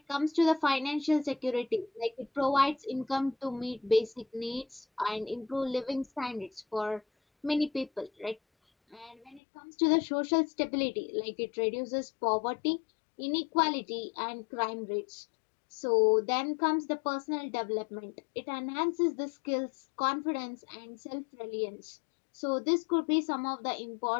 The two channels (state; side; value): drops out; right; at 9.4 s